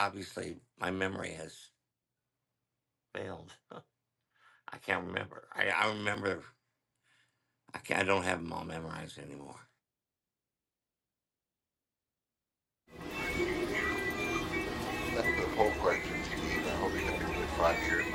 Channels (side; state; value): both; identical; correlation 1.00